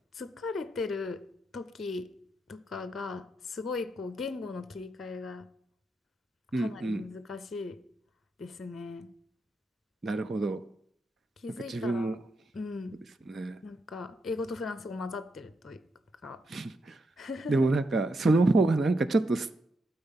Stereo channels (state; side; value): normal; both; correlation 0.82